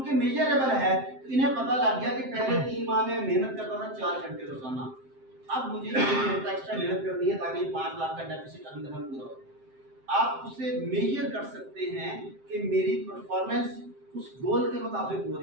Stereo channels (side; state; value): left; late; 7.6 ms